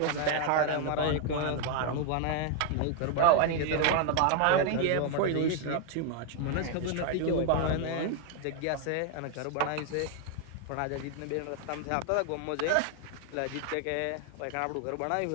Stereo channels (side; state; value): both; different; correlation 0.01